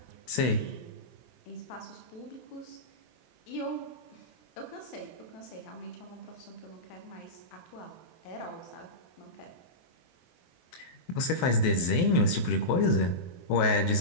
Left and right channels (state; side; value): late; right; 23 ms